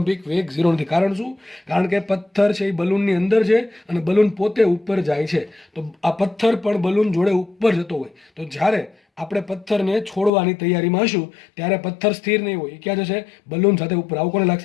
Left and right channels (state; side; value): drops out; right; at 10.3 s